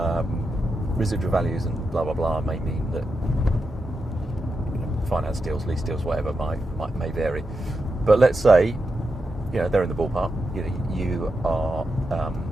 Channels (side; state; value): both; normal; correlation 0.87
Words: Residual values and blah blah blah may mean that finance deals, lease deals, whatever may vary. But let's say they're in the ballpark. You are